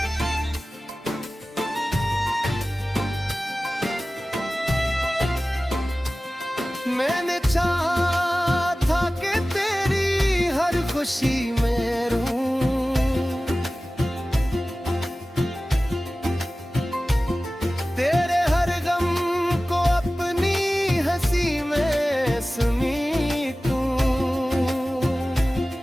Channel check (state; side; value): normal; both; correlation 0.96